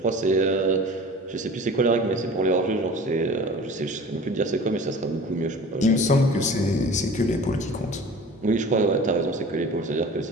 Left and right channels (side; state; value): both; normal; correlation 0.41